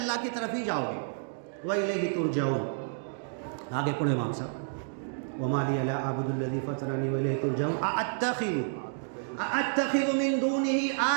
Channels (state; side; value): silent; left; digital silence